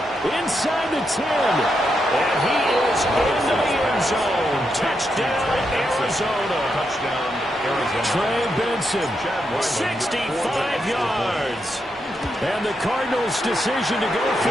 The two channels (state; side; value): normal; both; correlation 0.83